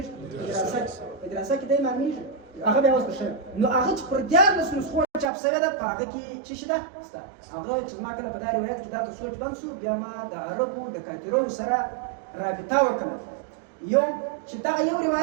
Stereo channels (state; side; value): drops out; left; at 5.2 s